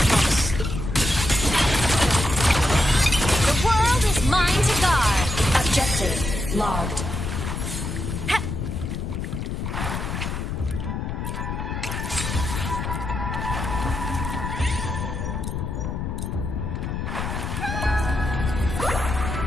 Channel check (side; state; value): left; noise; rumble, 4 dB below the sound